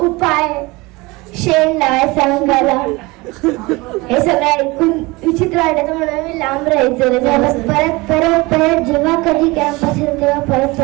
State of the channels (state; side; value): quieter; left; 23.3 dB